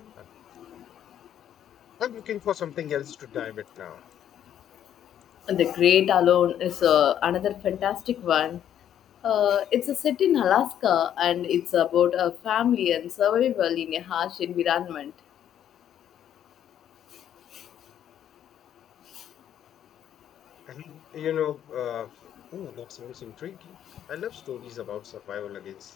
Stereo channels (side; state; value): right; quieter; 10.2 dB